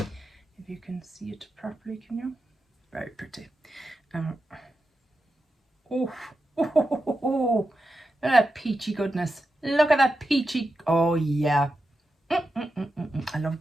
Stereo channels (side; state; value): both; normal; correlation 0.89